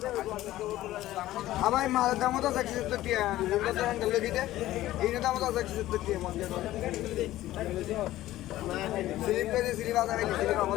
আবার মালের দাম তো 170 টাকা যেটা তো হ্যান্ডেল দিতে এই দাম তো 170 টাকা মনে স্লিপ করে স্লিপ আদা রাখি স্লিপ আমল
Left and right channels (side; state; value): right; quieter; 15.2 dB